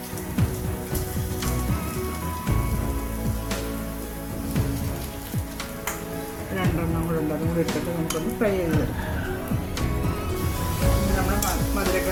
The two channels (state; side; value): identical; both; correlation 1.00